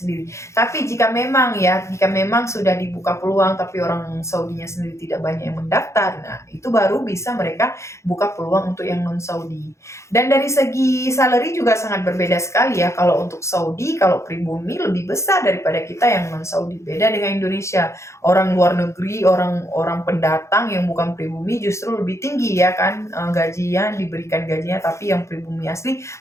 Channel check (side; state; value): right; late; 0.14 ms